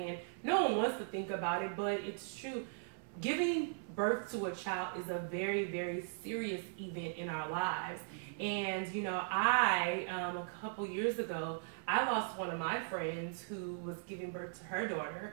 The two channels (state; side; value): silent; left; 52 dB below the other